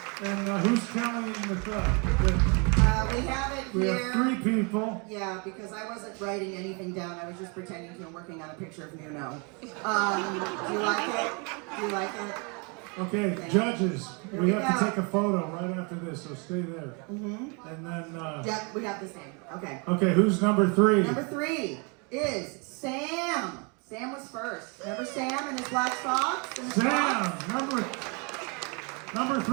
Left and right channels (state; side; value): quieter; left; 33.1 dB